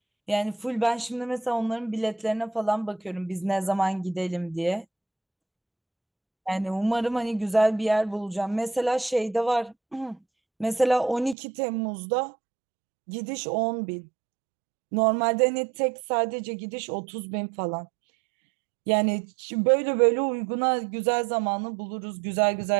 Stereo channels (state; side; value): drops out; left; at 11.4 s